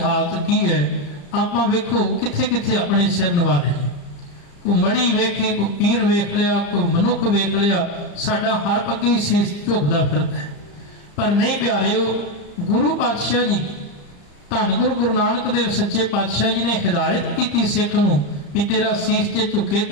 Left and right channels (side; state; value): right; late; 34 ms